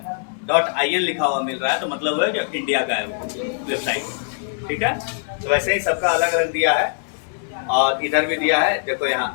.in लिखा हुआ मिल रहा है तो मतलब है कि इंडिया का है वेबसाइट। ठीक है, तो वैसे ही सबका अलग अलग दिया है। और इधर भी दिया है, देखो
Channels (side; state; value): right; silent; 64 dB below the other